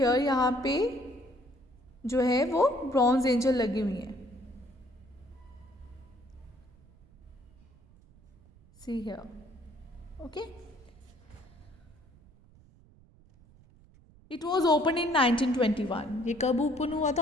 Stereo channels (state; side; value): noise; right; rumble, 26 dB below the sound